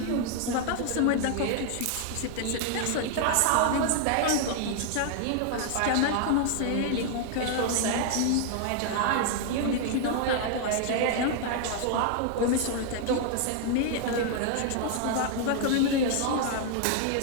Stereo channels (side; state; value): both; different; correlation 0.00